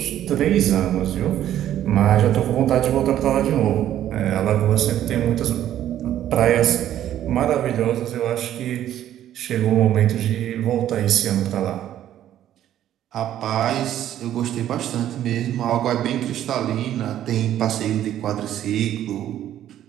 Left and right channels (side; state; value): left; quieter; 11.7 dB